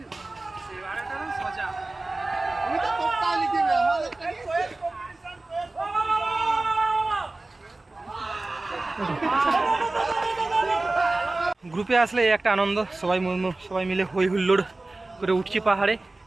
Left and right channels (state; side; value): quieter; left; 3.0 dB